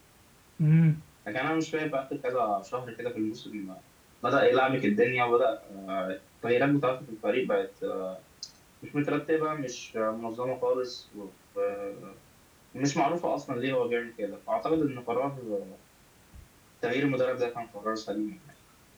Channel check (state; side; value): identical; both; correlation 1.00